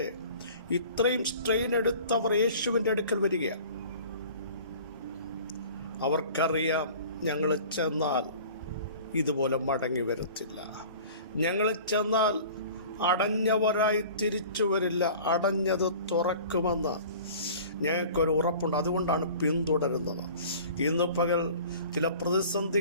ഇത്രയും സ്ട്രെയിൻ എടുത്തവർ യേശുവിൻ്റെ അടുക്കൽ വരികയാണ്. അവർക്കറിയാം, ഞങ്ങൾ ചെന്നാൽ ഇതുപോലെ മടങ്ങി വരത്തില്ല. ഞങ്ങൾ ചെന്നാൽ അടഞ്ഞവരായി തിരിച്ചു വരില്ല, അടഞ്ഞത് തുറക്കുമെന്ന് ഞങ്ങൾക്കൊരു ഉറപ്പുണ്ട്. അതുകൊണ്ടാണ് പിന്തുടരുന്നത്. ഇന്ന് പകൽ ചില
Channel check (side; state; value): both; inverted; correlation -0.44